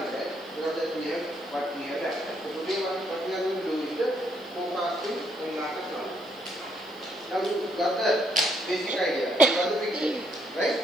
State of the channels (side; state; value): right; noise; hiss, 28 dB below the sound